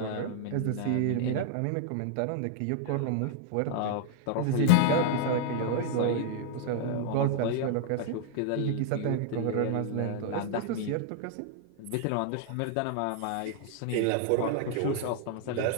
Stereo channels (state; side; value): different; both; correlation 0.00